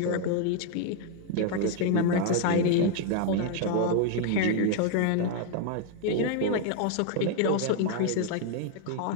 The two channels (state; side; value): different; both; correlation 0.00